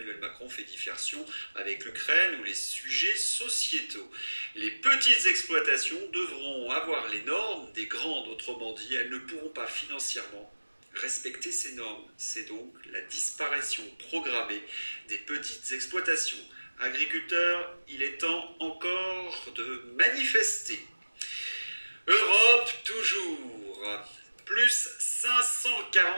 Macron fait diversion avec l'Ukraine ou les sujets sociétaux. Les petites exploitations devront avoir les normes des grandes, autrement dit, elles ne pourront pas financièrement respecter ces normes. C'est donc la disparition programmée des petites exploitations. Agriculteurs, il est temps encore de manifester. Europe toujours. Plus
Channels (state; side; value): inverted; both; correlation -1.00